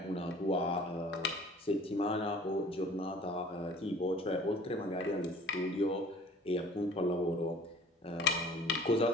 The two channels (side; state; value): both; normal; correlation 0.49